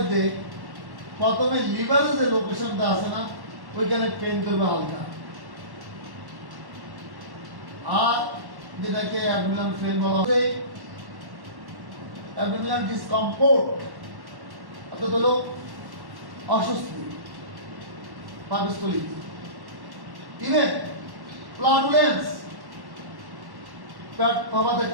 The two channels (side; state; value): left; late; 1.1 ms